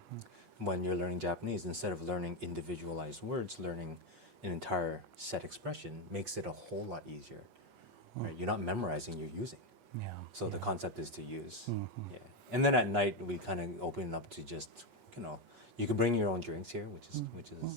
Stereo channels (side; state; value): left; late; 8.3 ms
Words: When you're learning Japanese, instead of learning individualized words, learning an entire set expression makes it a whole lot easier. Right? You're not memorizing, you're using. Yeah. So the concept is to use. Yeah. And then at night we kind of open it up to just, you can bring your own drinks here, which